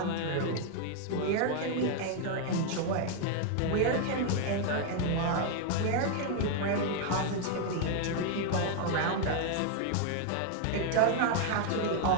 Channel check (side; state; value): both; different; correlation 0.00